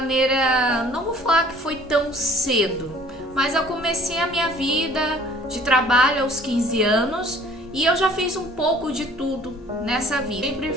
não vou falar que foi tão cedo, mas eu comecei a minha vida de trabalho aos 15 anos e eu já fiz um pouco de tudo nessa vida. Sempre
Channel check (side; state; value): both; normal; correlation 0.53